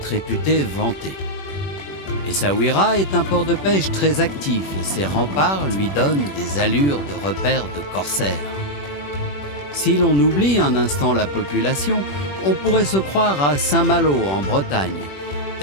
réputé vanté. Essaouira est un port de pêche très actif et ses remparts lui donnent des allures de repère de corsaires. Si l'on oublie un instant la population, on pourrait se croire à Saint-Malo en Bretagne,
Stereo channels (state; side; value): late; right; 21 ms